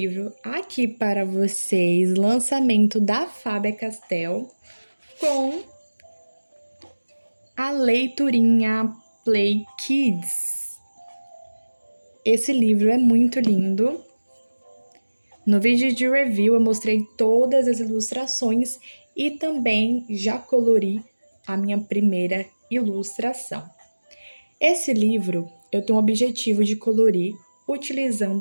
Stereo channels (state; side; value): inverted; both; correlation -1.00